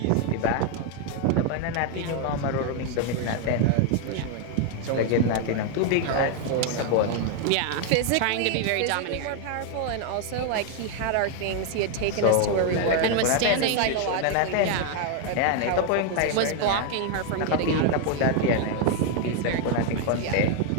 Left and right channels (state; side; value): different; both; correlation 0.01